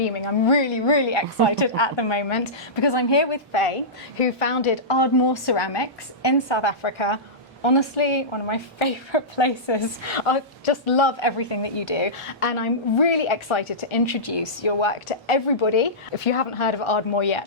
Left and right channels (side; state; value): both; normal; correlation -0.16